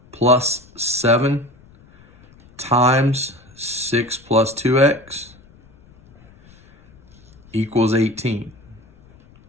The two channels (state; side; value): noise; left; rumble, 27 dB below the sound